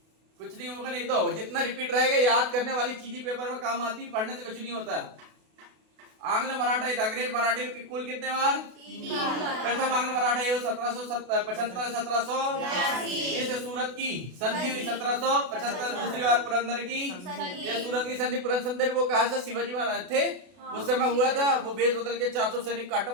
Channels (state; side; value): late; left; 32 ms